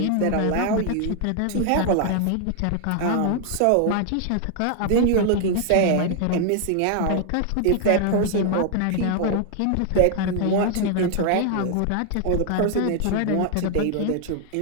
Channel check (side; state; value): both; different; correlation 0.00